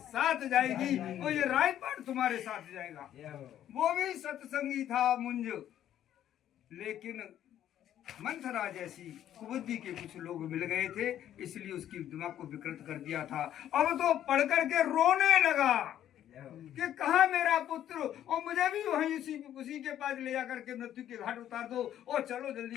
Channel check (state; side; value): quieter; right; 11.2 dB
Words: जाएगी और ये राजपाट तुम्हारे साथ जाएगा। वो भी सत्संगी था मुंज, लेकिन मंथरा जैसी कुबुद्धि के कुछ लोग मिल गए थे, इसलिए उसकी दिमाग को विकृत कर दिया था। अब तो पढ़ करके रोने लगा कि कहा मेरा पुत्र, और मुझे भी वहीं उसी के पास ले जाकर के मृत्यु के घाट उतार दो, और चलो